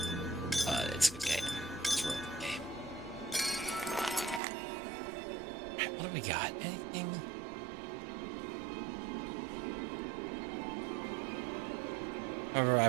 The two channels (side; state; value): left; drops out; at 4.4 s